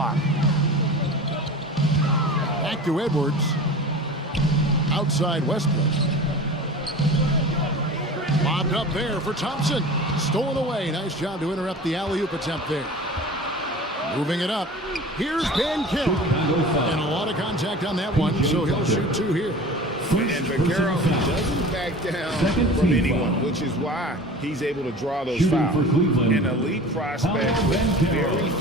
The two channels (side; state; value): both; normal; correlation 0.38